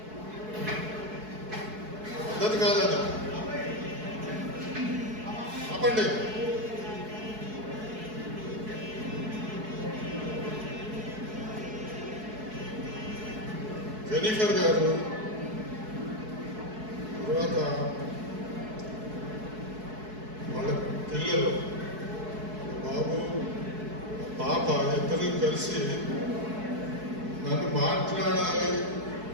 పద్ధతి కాదు అది. ఆపండి. జెనిఫర్ గారు, తర్వాత వాళ్ళ పిల్లలు, బాబు, పాప ఇద్దరు కలిసి నన్ను మాట్లాడాలి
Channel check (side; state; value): left; late; 4.7 ms